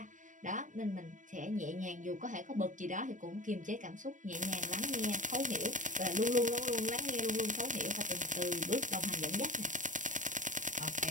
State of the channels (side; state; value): left; late; 0.37 ms